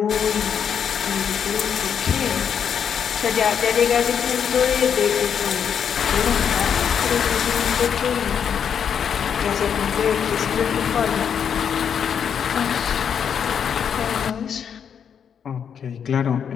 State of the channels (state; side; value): quieter; right; 7.8 dB